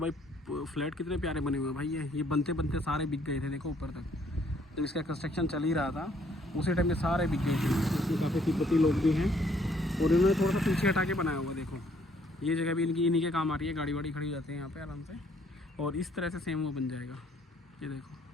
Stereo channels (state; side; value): normal; both; correlation 0.65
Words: फ्लैट कितने प्यारे बने हुए हैं भाई। ये बनते बनते सारे बिक गए थे, देखो ऊपर तक। जब इसका कंस्ट्रक्शन चल ही रहा था उसी टाइम में सारे बिक गए थे। इसमें काफ़ी तिब्बती लोग भी हैं और इन्होंने थोड़ा सा पीछे हटा के बनाया हुआ। देखो ये जगह भी इनकी इन्हीं के काम आ रही है, गाड़ी वाड़ी खड़ी हो जाती है यहाँ पे आराम से। और इस तरह से सेम वो बन जाएगा। ये देखो